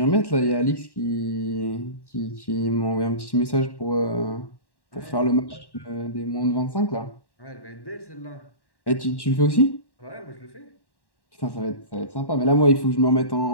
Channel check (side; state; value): right; late; 1.1 ms